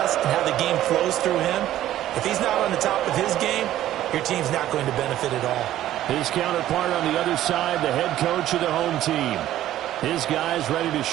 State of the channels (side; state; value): left; quieter; 13.2 dB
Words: and how the game flows through him, if he's not on the top of his game, your team's not going to benefit at all. His counterpart on the other side, the head coach of the home team. His guys ready to